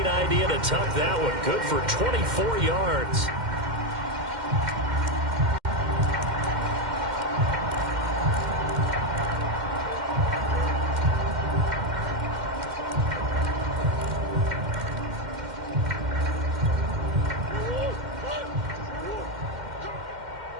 idea to tuck that one. Good for 24 yards.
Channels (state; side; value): late; left; 2.1 ms